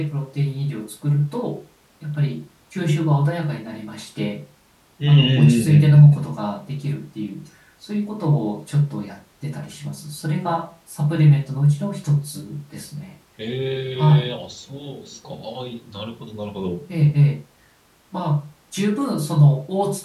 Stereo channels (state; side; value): identical; both; correlation 1.00